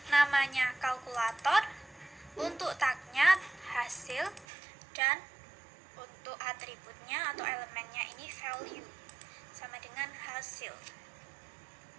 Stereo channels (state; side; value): drops out; left; at 4.5 s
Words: namanya kalkulator, untuk tagnya hasil, dan untuk atributnya atau elemennya ini value, sama dengan hasil.